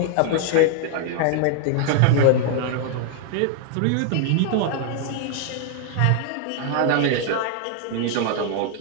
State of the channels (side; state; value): both; different; correlation 0.00